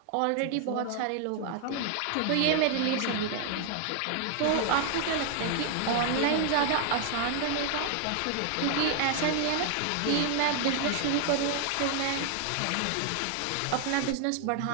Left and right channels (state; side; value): different; both; correlation 0.00